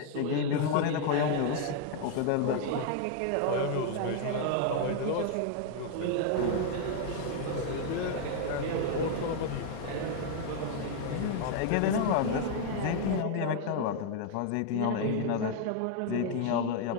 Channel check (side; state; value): both; different; correlation 0.00